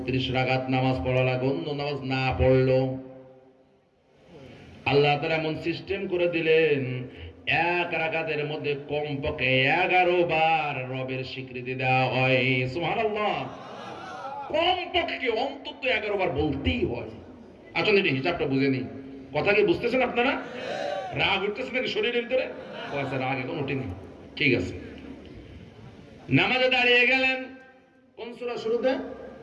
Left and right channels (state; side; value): identical; both; correlation 1.00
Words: রাকাত নামাজ পড়া লাগে। অন্য নামাজ না পড়লো আল্লাহ তাআলা এমন সিস্টেম করে দিলেন, এক রাকাতের মধ্যে কমপক্ষে 11 বার রবের স্বীকৃতি দেওয়া হয়। সুবহানাল্লাহ। কমপক্ষে অন্তত 11 বার বলতেই হয়। আসলে এটা হিসাবটা বুঝে নেই। কথা কি বুঝতেছেন আপনারা? রাগ উঠতেছে নাকি শরীরের ভিতরে? আচ্ছা, রাগ এখন উঠেনি, ঠিক আছে। নামাজে দাঁড়িয়ে গেলেন, কোন সূরা শুরুতে?